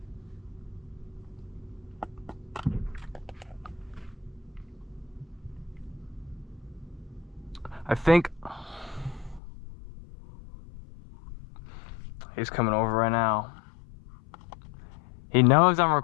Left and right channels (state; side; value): drops out; right; at 9.4 s